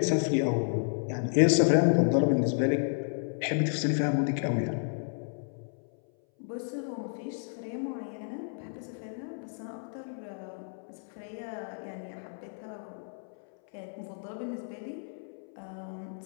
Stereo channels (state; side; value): silent; right; 57 dB below the other